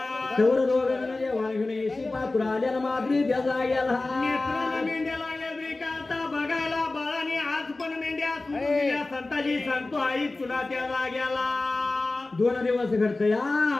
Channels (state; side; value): quieter; right; 3.2 dB